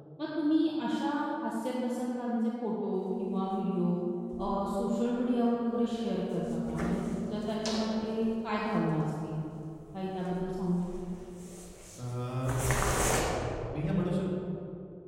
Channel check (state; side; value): identical; both; correlation 1.00